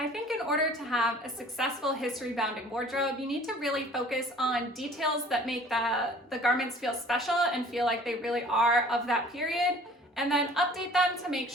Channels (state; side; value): normal; both; correlation 0.50